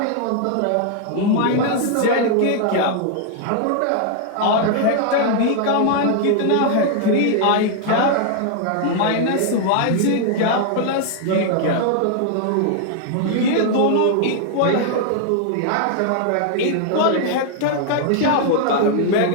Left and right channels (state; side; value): different; both; correlation 0.00